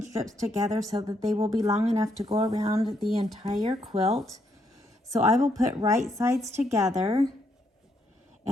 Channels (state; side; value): normal; both; correlation 0.75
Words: strips together so that they will be long enough to go around the entire quilt. So I will put right sides together,